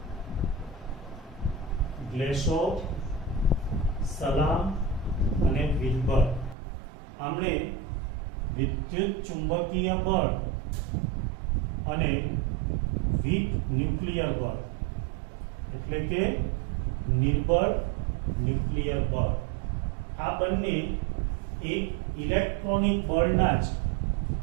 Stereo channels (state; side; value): drops out; left; at 6.6 s